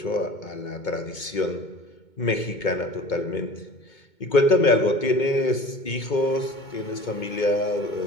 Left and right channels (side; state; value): right; late; 2.2 ms